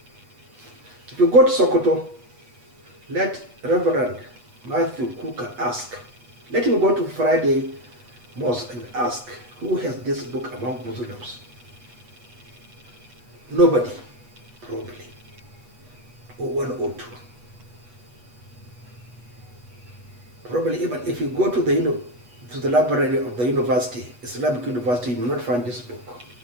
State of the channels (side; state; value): left; late; 8.3 ms